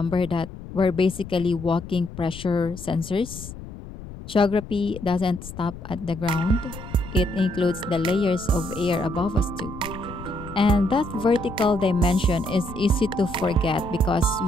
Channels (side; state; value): left; noise; rumble, 13 dB below the sound